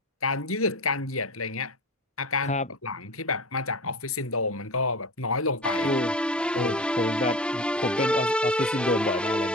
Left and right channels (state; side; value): normal; both; correlation 0.31